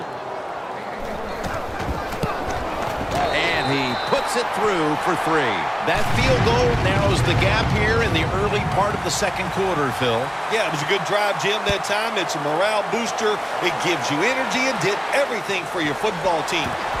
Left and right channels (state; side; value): identical; both; correlation 1.00